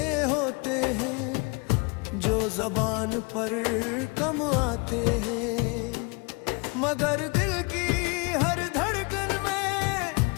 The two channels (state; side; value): quieter; right; 30.5 dB